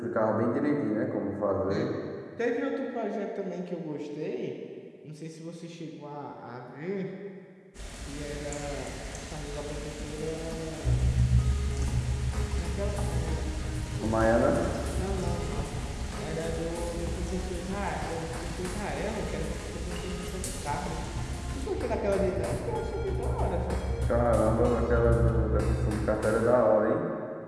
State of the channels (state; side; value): identical; both; correlation 1.00